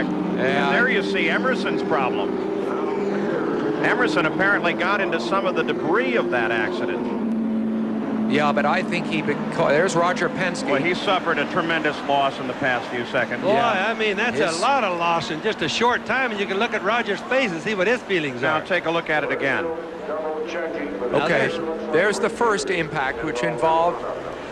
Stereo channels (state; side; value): identical; both; correlation 1.00